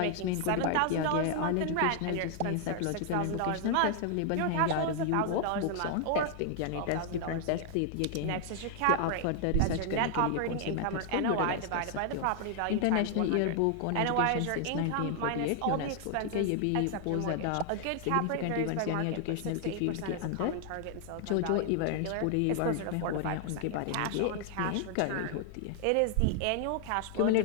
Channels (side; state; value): both; different; correlation 0.00